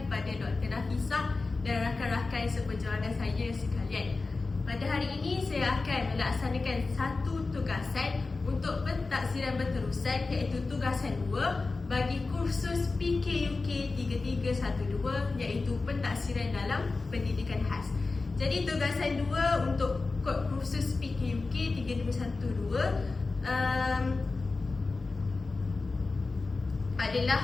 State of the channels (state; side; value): quieter; right; 3.8 dB